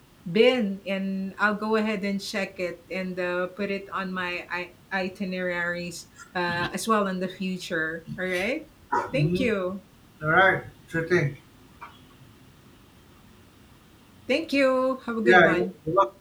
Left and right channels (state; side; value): identical; both; correlation 1.00